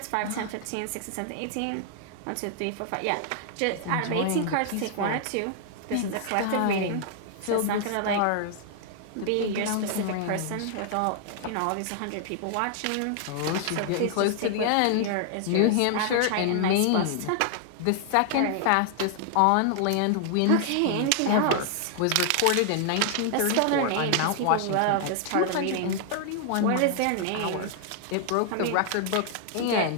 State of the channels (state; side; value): different; both; correlation 0.00